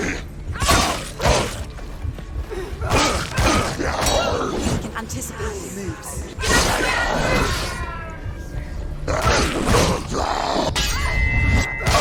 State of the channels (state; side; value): identical; both; correlation 1.00